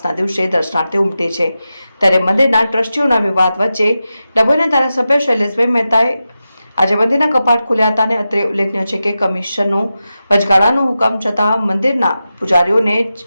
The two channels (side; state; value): both; inverted; correlation -0.92